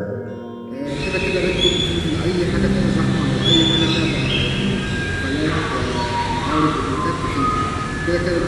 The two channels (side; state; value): both; identical; correlation 1.00